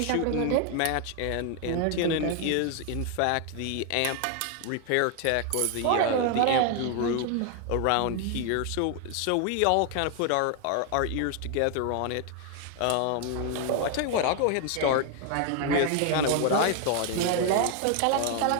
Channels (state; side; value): different; both; correlation 0.00